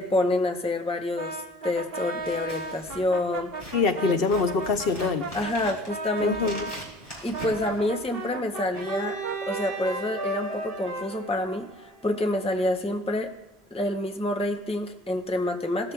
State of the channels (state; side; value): normal; both; correlation 0.51